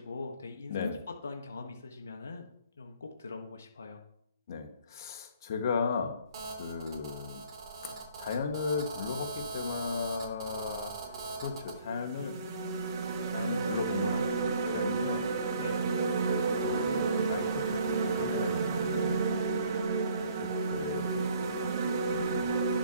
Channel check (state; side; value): inverted; both; correlation -0.59